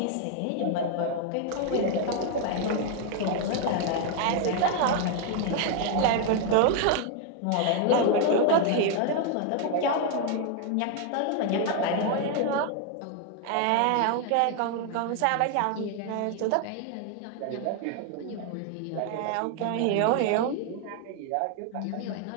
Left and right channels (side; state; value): both; different; correlation 0.00